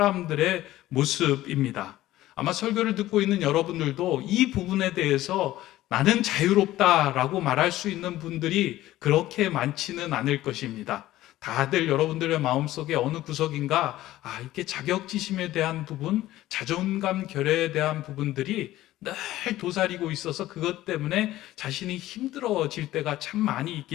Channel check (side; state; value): right; quieter; 15.3 dB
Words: 모습입니다. 아마 설교를 듣고 있는 여러분들도 이 부분에 대해서 나는 자유롭다라고 말할 수 있는 분들이 그렇게 많지는 않을 것입니다. 다들 여러분들의 마음속에 어느 구석인가 이렇게 자격지심에 대한 부분, 자존감 결여에 대한 부분들이 늘 도사리고 있어서 그것 때문에 자신이 힘들어질 때가 참 많이